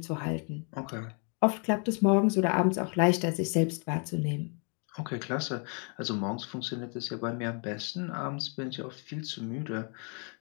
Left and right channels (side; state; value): right; quieter; 38.7 dB